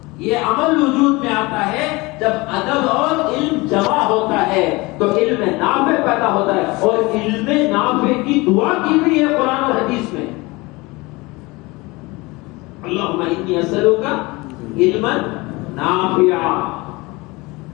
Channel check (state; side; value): quieter; right; 23.5 dB